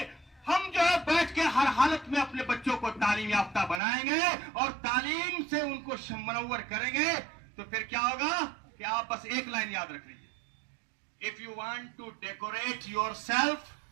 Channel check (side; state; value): left; drops out; at 3.8 s